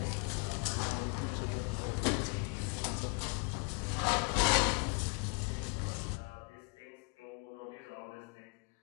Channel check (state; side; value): quieter; right; 35.5 dB